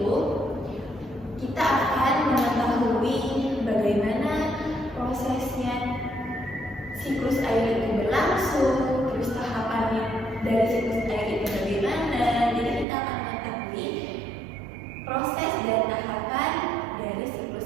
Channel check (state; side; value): drops out; left; at 12.9 s